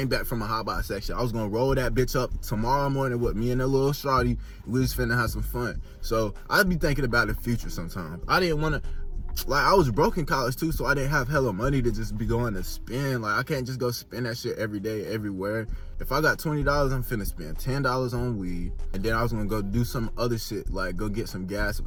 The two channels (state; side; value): identical; both; correlation 1.00